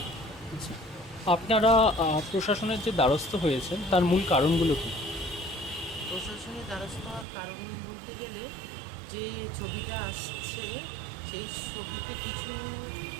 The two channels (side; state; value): left; drops out; at 7.2 s